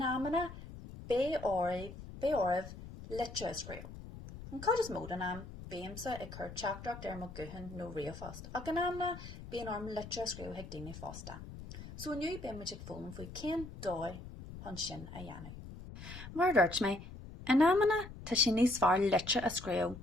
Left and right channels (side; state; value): left; noise; rumble, 13 dB below the sound